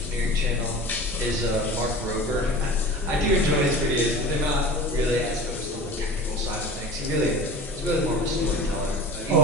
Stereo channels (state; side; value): normal; both; correlation 0.37